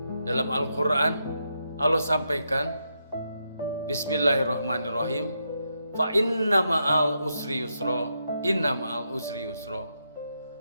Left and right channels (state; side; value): inverted; both; correlation -0.82